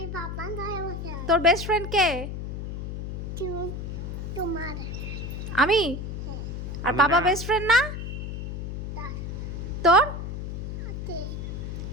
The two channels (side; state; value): left; noise; hum, 5 dB below the sound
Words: তোর বেস্ট ফ্রেন্ড কে? আমি? আর আমি বাবা না। বেস্ট ফ্রেন্ড না? তোর